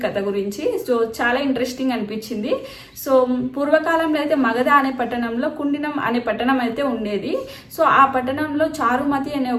కథ గురించి. సో చాలా ఇంట్రెస్టింగ్ అనిపించింది. సో పూర్వకాలంలో అయితే మగధ అనే పట్టణంలో కుండినం అనే పట్టణం అయితే ఉండేది. సో ఆ పట్టణంలో చారుమతి అనే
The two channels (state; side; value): identical; both; correlation 1.00